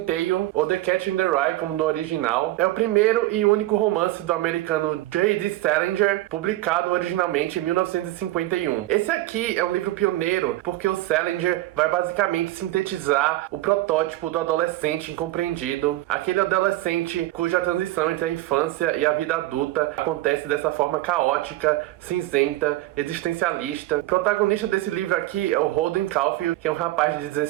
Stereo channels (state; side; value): quieter; left; 17.0 dB